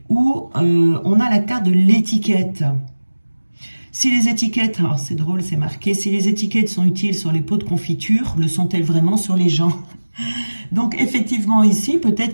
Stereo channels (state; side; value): inverted; both; correlation -1.00